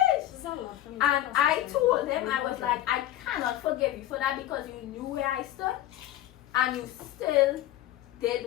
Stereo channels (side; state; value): right; quieter; 13.6 dB